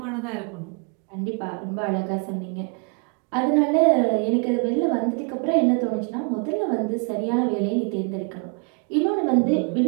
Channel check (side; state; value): left; quieter; 38.0 dB